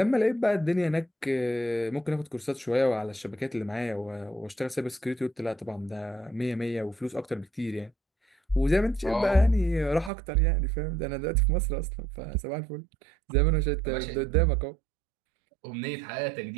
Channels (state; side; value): drops out; left; at 10.1 s